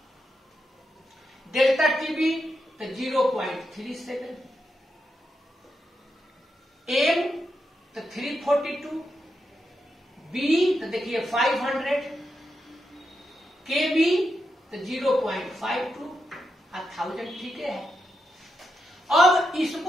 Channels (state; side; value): normal; both; correlation 0.86